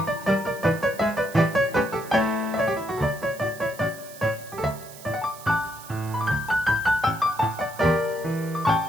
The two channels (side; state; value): right; noise; hiss, 17 dB below the sound